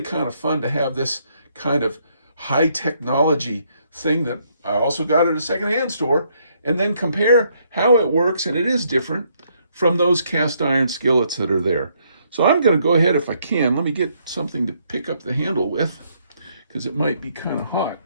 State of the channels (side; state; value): both; inverted; correlation -0.71